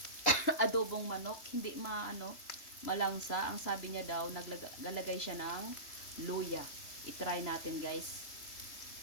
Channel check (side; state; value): right; late; 3.0 ms